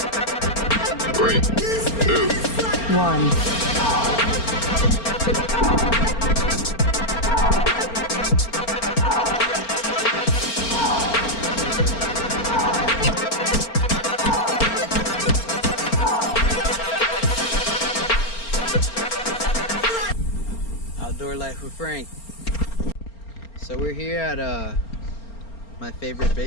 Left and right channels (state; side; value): late; right; 4.4 ms